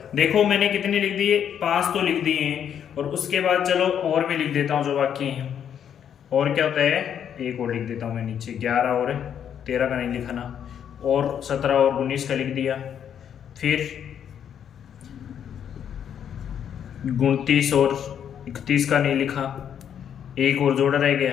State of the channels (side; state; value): right; quieter; 8.8 dB